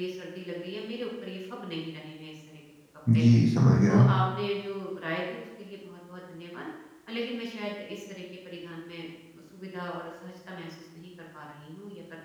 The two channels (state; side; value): identical; both; correlation 1.00